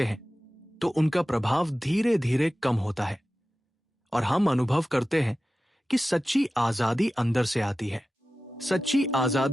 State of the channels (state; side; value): normal; both; correlation 0.95